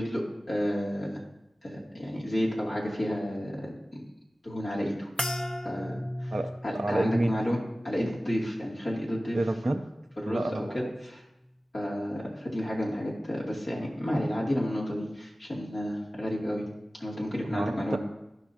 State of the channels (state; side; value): normal; both; correlation 0.96